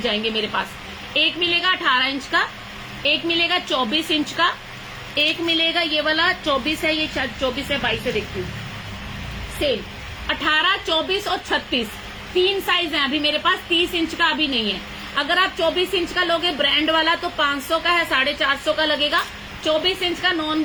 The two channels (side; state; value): both; identical; correlation 1.00